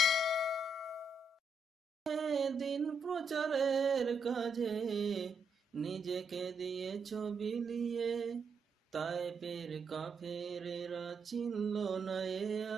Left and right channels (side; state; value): both; normal; correlation 0.80